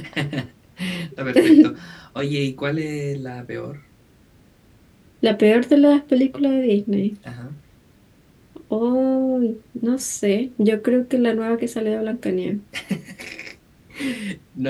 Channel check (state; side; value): identical; both; correlation 1.00